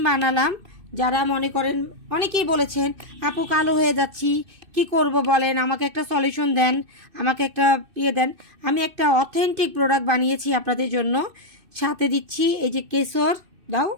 বানালাম। যারা মনে করেন, অনেকেই বলেছেন আপু কালো হয়ে যাচ্ছি, কি করব বলেন, আমাকে একটা সলিউশন দেন, আমাকে একটা দেন। আমি একটা অথেন্টিক প্রোডাক্ট বানিয়েছি আপনাদের জন্য। সাথে দিচ্ছি এই যে কেশর, দাও,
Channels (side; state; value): left; late; 2.6 ms